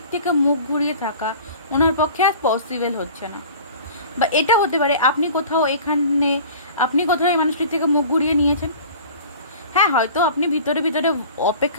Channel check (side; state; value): both; inverted; correlation -0.42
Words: থেকে মুখ ঘুরিয়ে থাকা ওনার পক্ষে আর পসিবল হচ্ছে না। বা এটা হতে পারে আপনি কোথাও এখানে, আপনি কোথাও এই মানুষটির থেকে মুখ ঘুরিয়ে নিয়েছেন। হ্যাঁ, হয়তো আপনি ভিতরে ভিতরে